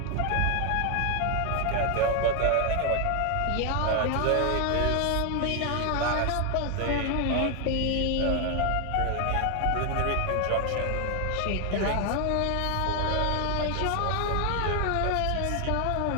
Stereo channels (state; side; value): different; both; correlation 0.01